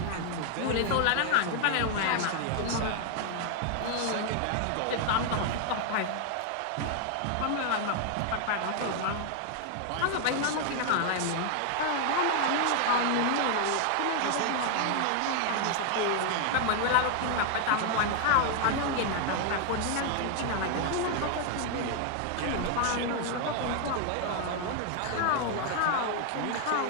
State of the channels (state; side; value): different; both; correlation 0.00